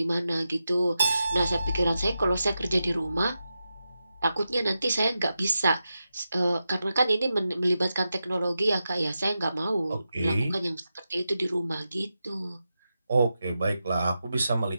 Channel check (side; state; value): both; inverted; correlation -0.89